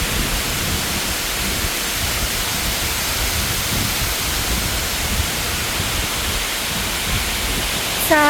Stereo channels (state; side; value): identical; both; correlation 1.00